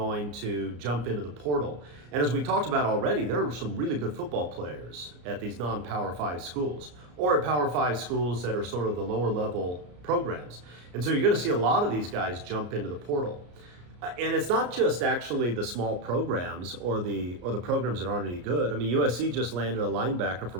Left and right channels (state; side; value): late; left; 34 ms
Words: to jump into the portal. And as we talked about already, there are some really good football players at these non-Power 5 schools, or at Power 5 schools that are sort of the lower level programs. And so you're going to see a lot of these guys jump into the portal. And it's not just actually the small programs or the programs that aren't any good. I mean, USC just landed a linebacker